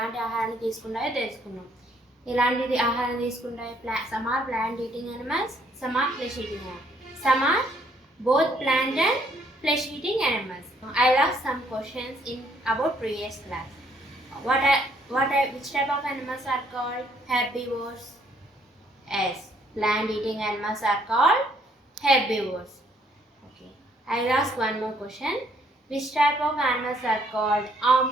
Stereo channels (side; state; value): both; normal; correlation 0.66